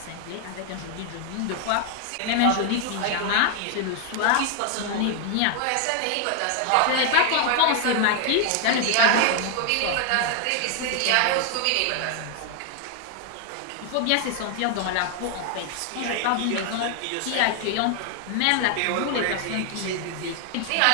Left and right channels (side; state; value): both; different; correlation 0.00